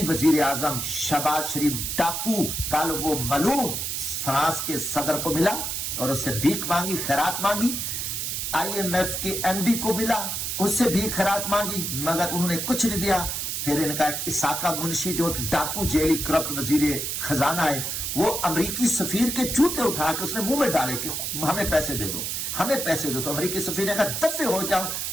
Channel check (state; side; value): noise; right; hiss, 2 dB below the sound